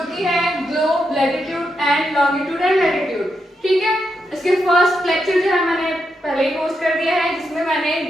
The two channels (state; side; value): normal; both; correlation 0.83